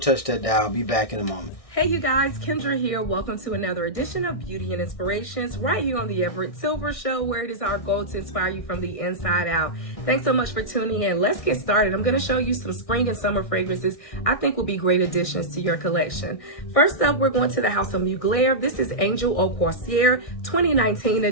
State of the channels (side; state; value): right; late; 1.6 ms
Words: touch that dial. Be back in a moment. Hey you guys, Kendra here. Welcome to another edition of Beauty and Inspirations right here on the Everett Silver Show, where it is our goal to inspire you from the inside out. Thanks so much for tuning in. Let's get started. I'm going to show you some spring and summer fragrances I think will be great additions to your collection. First up, we're going to the House of Mugler. This is Angel Au Corsaire 2019